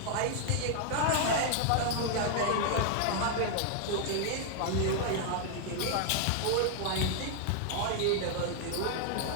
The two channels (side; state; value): both; different; correlation 0.00